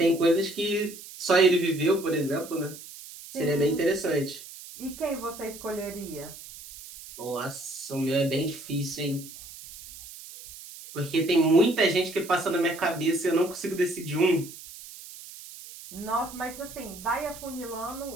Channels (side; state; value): right; noise; hiss, 15 dB below the sound